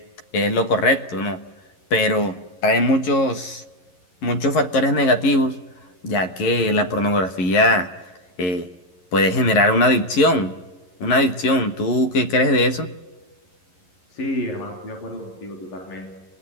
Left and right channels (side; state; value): right; late; 11 ms